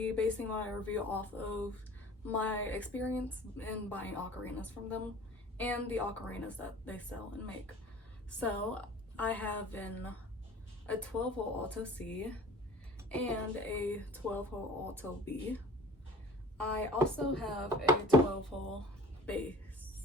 basing my review off of my experience in buying ocarinas from them and the ocarinas that they sell and make. So I have a 12-hole Alto C and a 12-hole Alto B. I also have a 12-hole bass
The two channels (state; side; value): normal; both; correlation 0.45